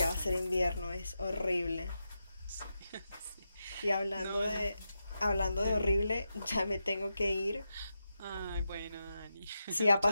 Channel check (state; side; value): inverted; both; correlation -0.88